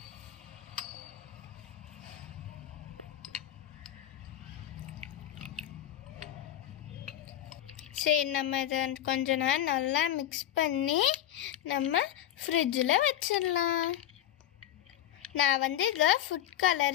சரி, நம்ம இதை கொஞ்ச நேரம் நல்லா மிக்ஸ் பண்ணி நம்ம ஃப்ரிட்ஜில் வச்சிடலாம். நான் வந்து இதில் ஃபுட்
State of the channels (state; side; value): quieter; right; 12.0 dB